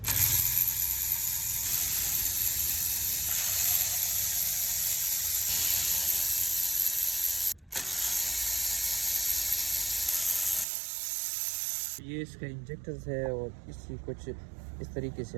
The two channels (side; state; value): left; drops out; at 10.7 s